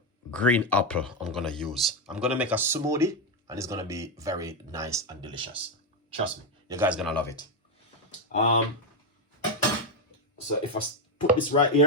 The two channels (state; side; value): normal; both; correlation 0.06